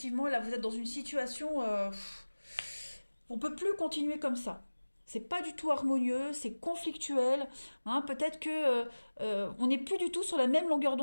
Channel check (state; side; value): inverted; both; correlation -1.00